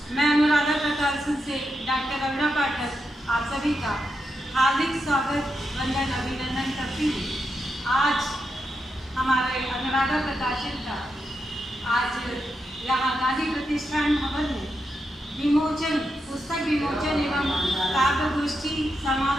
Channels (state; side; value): normal; both; correlation 0.85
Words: मैं अनुराधा प्रकाशन से डॉक्टर रवीना पाठक आप सभी का हार्दिक स्वागत वंदन अभिनंदन करती हूँ। आज हमारे अनुराधा प्रकाशन का आज यहाँ गांधी प्रतिष्ठान भवन में विमोचन पुस्तक विमोचन एवं काव्य गोष्ठी